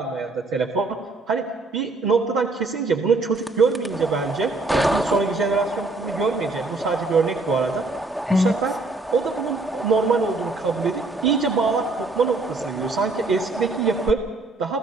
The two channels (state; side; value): quieter; left; 3.3 dB